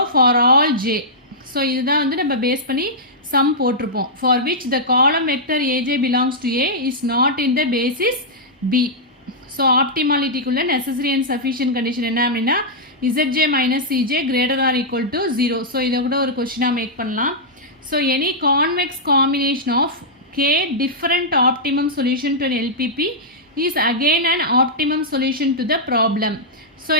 for all J. So இதுதான் வந்து நம்ம பேஸ் பண்ணி சம் போட்டிருப்போம். For which the column vector a j belongs to A is not in the basis B. So ஆப்டிமாலிட்டிக்குள்ள necessary and sufficient condition என்ன அப்படின்னா இசட்ஜே minus c j greater or equal to 0. So இதை கூட ஒரு கொஸ்டினாக மேக் பண்ணலாம். So any convex combination of K different optimum solution to LPP is again and optimum solution to the problem. So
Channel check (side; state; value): both; normal; correlation -0.09